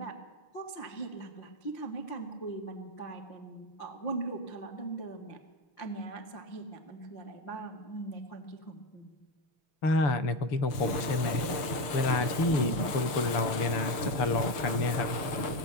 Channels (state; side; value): late; right; 6.6 ms